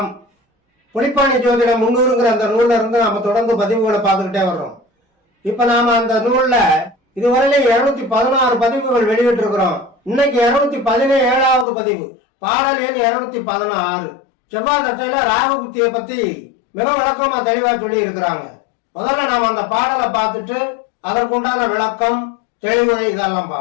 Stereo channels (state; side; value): drops out; right; at 11.7 s